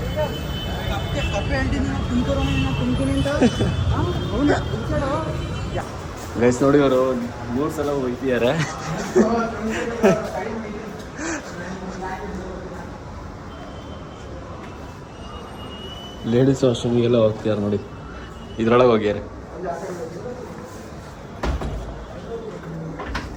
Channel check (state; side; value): identical; both; correlation 1.00